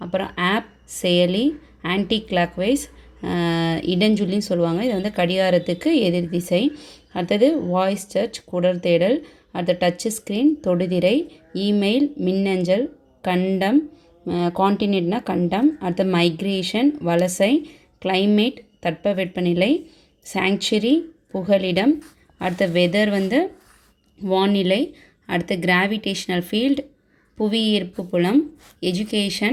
அப்புறம் ஆப் செயலி, ஆன்டி கிளாக் வைஸ் இடஞ்சொல்லின்னு சொல்லுவாங்க. இது வந்து கடிகாரத்துக்கு எதிர் திசை. அடுத்தது வாய்ஸ் சர்ச் குடல் தேடல், அடுத்த டச் ஸ்க்ரீன் தொடுதிரை, இமெயில் மின்னஞ்சல், கண்டம் கான்டினென்ட்னா கண்டம், அடுத்த மைக்ரேஷன் வலசை, கிளைமேட் தட்பவெப்பநிலை, சாங்சுரி புகலிடம், அடுத்த வெதர் வந்து வானிலை, அடுத்த கிராவிடேஷனல் ஃபீல்டு புவியீர்ப்பு புலம்,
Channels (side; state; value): both; identical; correlation 1.00